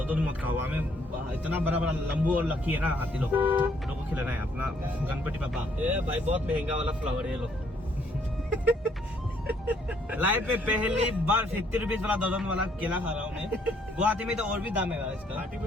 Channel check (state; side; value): normal; both; correlation 0.67